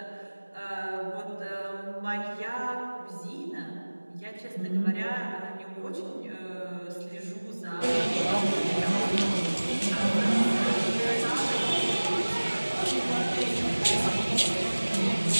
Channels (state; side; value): inverted; both; correlation -1.00